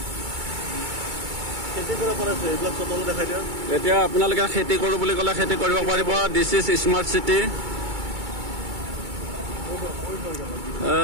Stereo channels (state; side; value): late; left; 2.3 ms